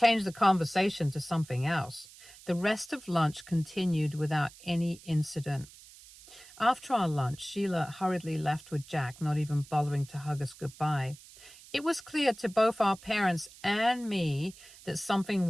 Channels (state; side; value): noise; right; hiss, 21 dB below the sound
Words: the conversation to something else. The rest of lunch continued without any incident. After our lunch, Sheila hurriedly left with Jack, not even bothering to hug us goodbye. It was clear to both our parents and me that something